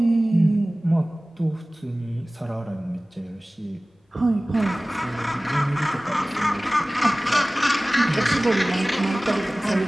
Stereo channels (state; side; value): normal; both; correlation 0.98